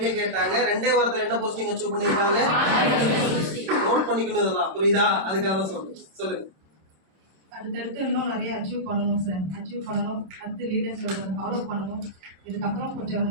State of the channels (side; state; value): left; late; 26 ms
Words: கேட்டாங்க. 2 வாரத்துல என்ன போஸ்டிங் அச்சீவ் பண்ணிருக்காங்க? நோட் பண்ணிக்கணும் இதெல்லாம். புரியுதா? அதுக்காக தான் சொல்லுங்க. அடுத்தடுத்து இன்னும் நிறைய அச்சீவ் பண்ணணும் சார். அச்சீவ் பண்ணணும். அடுத்து லீடர் சொல்றதை ஃபாலோ பண்ணணும். இதுக்கப்புறம் கொஞ்சம்